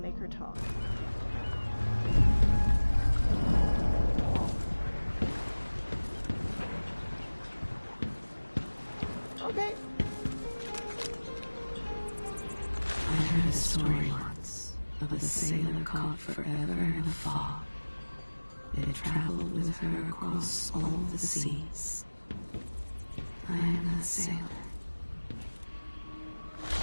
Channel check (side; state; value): both; inverted; correlation -1.00